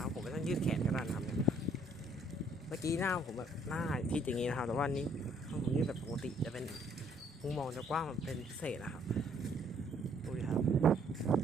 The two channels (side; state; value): both; normal; correlation 0.64